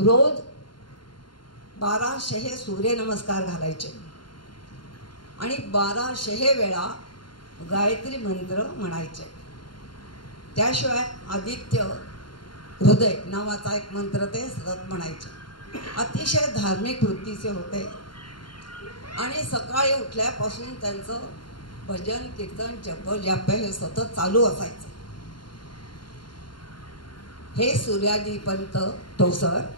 1200 सूर्यनमस्कार घालायचे आणि 1200 वेळा गायत्री मंत्र म्हणायचे. त्याशिवाय आदित्य हृदय नावाचा एक मंत्र ते सतत म्हणायचे. अतिशय धार्मिक वृत्तीचे होते आणि सकाळी उठल्यापासून त्यांचं भजन कीर्तन जप हे सतत चालू असायचं. हे सूर्याजी पंत ठोसर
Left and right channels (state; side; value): late; right; 0.72 ms